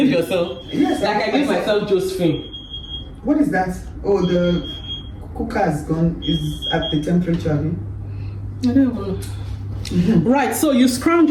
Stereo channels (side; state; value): both; identical; correlation 1.00